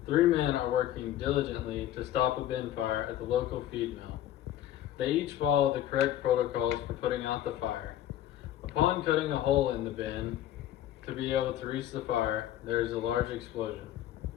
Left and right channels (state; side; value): quieter; right; 12.4 dB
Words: Three men are working diligently to stop a bin fire at the local feed mill. They each follow the correct protocols for putting out the fire. Upon cutting a hole in the bin to be able to reach the fire, there is a large explosion.